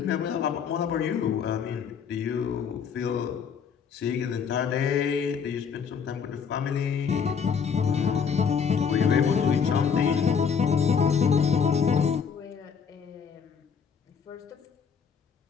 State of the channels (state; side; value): quieter; right; 6.7 dB